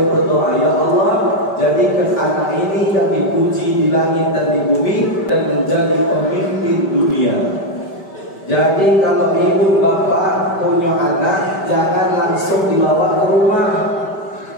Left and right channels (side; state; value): right; late; 5.1 ms